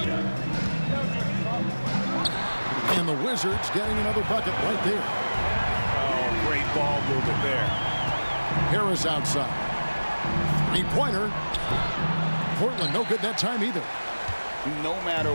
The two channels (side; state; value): both; inverted; correlation -1.00